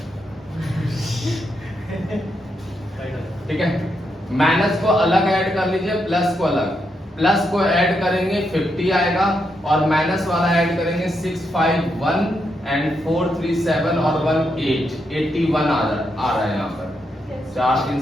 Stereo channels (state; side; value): normal; both; correlation 0.81